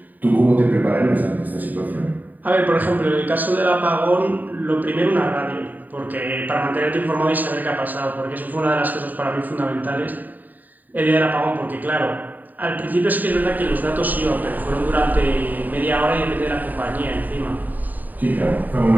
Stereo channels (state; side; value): late; left; 0.086 ms